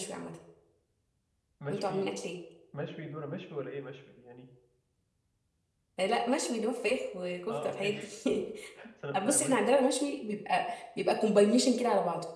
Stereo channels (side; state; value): both; identical; correlation 1.00